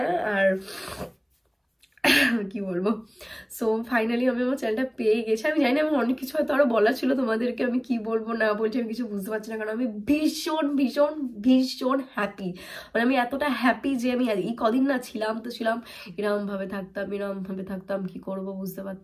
আর কি বলবো, সো ফাইনালি আমি আমার চ্যানেলটা পেয়ে গেছি। আমি জানি না, আমার অনেক কিছু হয়তো আরো বলার ছিল তোমাদেরকে, আমি কি বলবো না বলছি আমি কিছু বুঝতে পারছি না, কারণ আমি ভীষণ ভীষণ ভীষণ হ্যাপি। মানে আমি এতটা হ্যাপি যে আমি এই কদিন না ছিলাম তো ছিলাম এরম ভাবে থাকতাম, কি করব বুঝতে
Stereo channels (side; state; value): both; identical; correlation 1.00